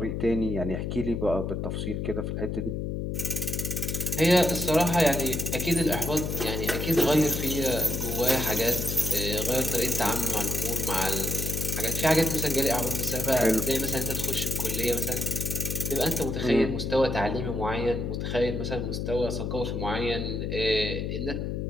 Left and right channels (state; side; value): noise; left; hum, 2 dB below the sound